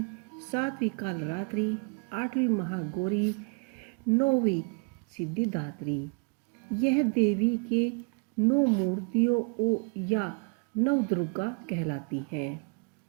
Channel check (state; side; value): quieter; left; 34.5 dB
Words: सातवीं कालरात्रि, आठवीं महागौरी, नौवीं सिद्धिदात्री। यह देवी के 9 मूर्तियों या नवदुर्गा कहलाती हैं।